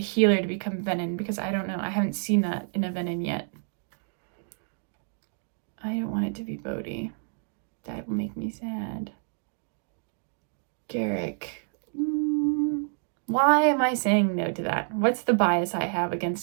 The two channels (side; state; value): left; silent; 59 dB below the other